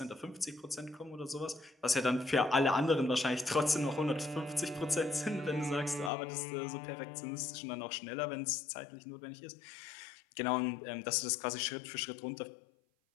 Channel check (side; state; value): right; drops out; at 6.1 s